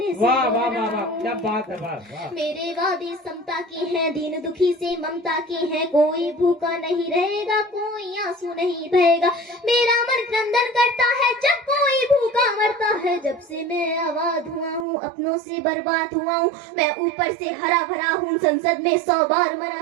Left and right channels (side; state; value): left; drops out; at 14.9 s